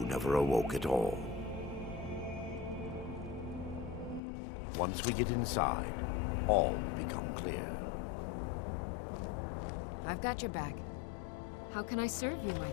awoke at all. Once we get inside, all will become clear. I've got your back. How can I serve you, my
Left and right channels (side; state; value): right; drops out; at 4.2 s